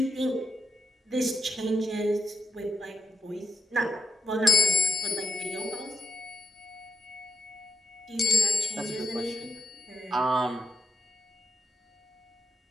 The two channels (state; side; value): normal; both; correlation 0.85